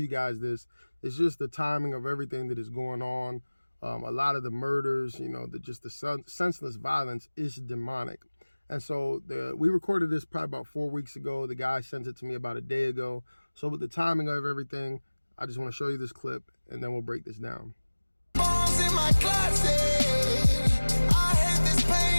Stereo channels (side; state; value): both; inverted; correlation -1.00